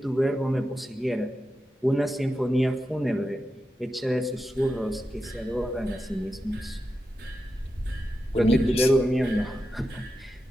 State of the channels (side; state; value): both; normal; correlation 0.89